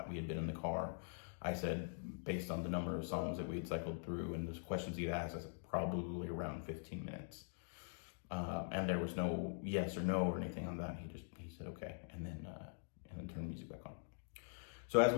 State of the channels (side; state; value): right; silent; digital silence